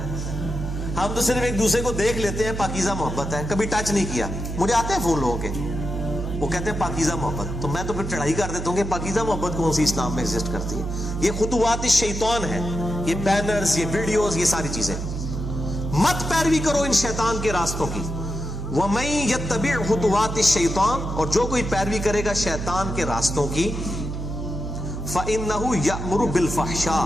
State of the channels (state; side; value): noise; right; hum, 5 dB below the sound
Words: ہم تو صرف ایک دوسرے کو دیکھ لیتے ہیں، پاکیزہ محبت ہے، کبھی ٹچ نہیں کیا۔ مجھے آتے ہیں فون لوگوں کے، وہ کہتے ہیں پاکیزہ محبت، تو میں تو پھر چڑھائی کر دیتا ہوں کہ پاکیزہ محبت کون سی اسلام میں ایگزسٹ کرتی ہے؟ یہ خطوات الشیطان ہے، یہ بینرز، یہ ویڈیوز، یہ ساری چیزیں، مت پیروی کرو ان شیطان کے راستوں کی۔ وَمَن يَتَّبِعْ خُطُوَاتِ الشَّيْطَانِ، اور جو کوئی پیروی کرے گا شیطان کے راستوں کی، فَإِنَّهُ يَأْمُرُ